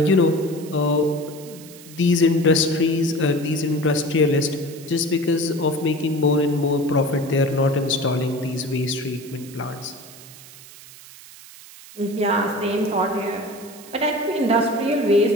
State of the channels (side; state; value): right; noise; hiss, 19 dB below the sound